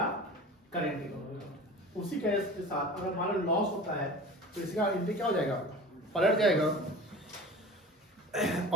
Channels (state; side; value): normal; both; correlation 0.37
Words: करेंट अकाउंट। उसी केस के साथ अगर हमारा लॉस होता है तो इसका एंट्री क्या हो जाएगा? पलट जाएगा,